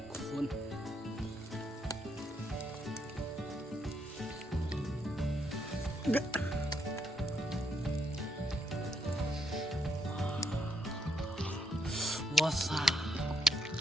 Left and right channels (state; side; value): normal; both; correlation 0.74